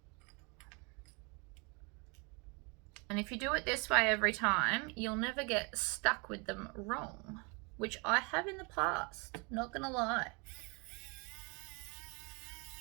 And if you do it this way every time, you'll never get stuck with them wrong, which I have in the past, not gonna lie.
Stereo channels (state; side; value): quieter; left; 31.6 dB